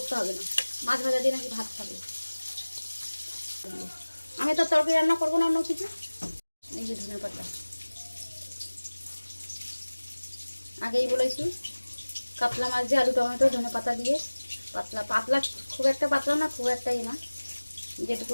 হবে না, মাছ ভাজা দিয়ে নাকি ভাত খাবে। আমি তো তরকারি রান্না করবো না অন্য কিছু। এই যে ধনে পাতা আগেই বলেছি, কাতলা মাছ দিয়ে আলু টমেটো ধনে পাতা দিয়ে পাতলা পাতলা, খুব একটা পাতলা না, খুব একটাই না, যেটুকু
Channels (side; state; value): both; inverted; correlation -1.00